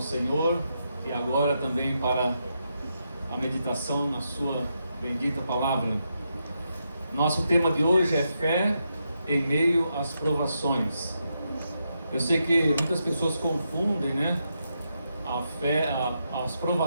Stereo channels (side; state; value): both; inverted; correlation -0.83